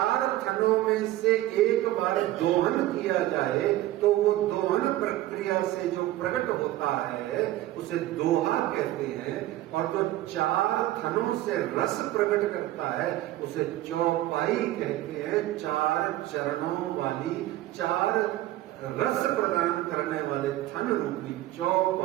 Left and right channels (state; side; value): quieter; left; 15.4 dB